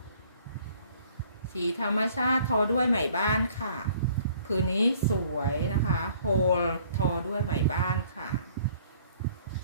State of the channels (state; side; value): inverted; both; correlation -0.58